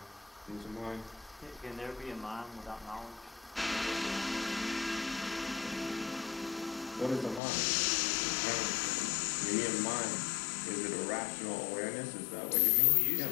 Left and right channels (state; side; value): drops out; right; at 7.4 s